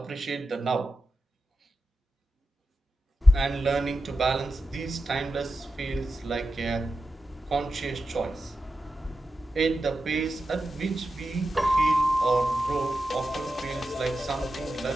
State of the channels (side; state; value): both; normal; correlation 0.91